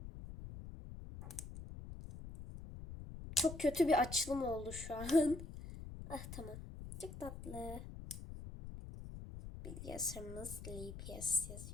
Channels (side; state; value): left; noise; rumble, 11 dB below the sound